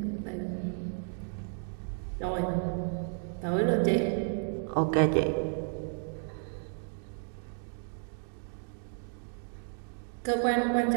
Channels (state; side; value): silent; left; 56 dB below the other